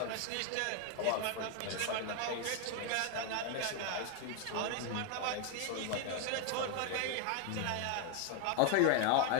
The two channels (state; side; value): different; both; correlation 0.01